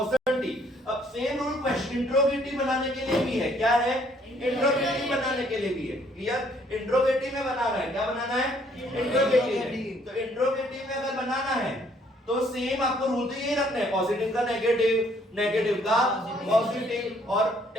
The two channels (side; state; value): both; normal; correlation 0.64